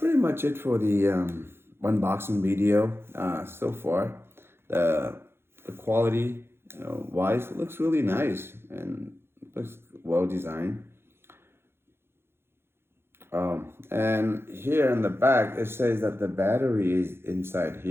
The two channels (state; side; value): late; left; 0.11 ms